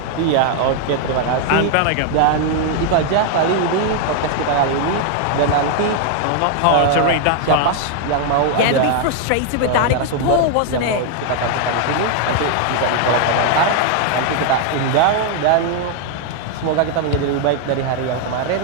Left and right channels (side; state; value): both; different; correlation 0.00